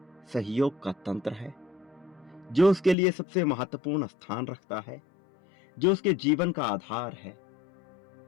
सहयोग का तंत्र है, जो उसके लिए सबसे महत्वपूर्ण स्थान रखता है, जो उसके जीवन का आधार है,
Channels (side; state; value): right; drops out; at 3.0 s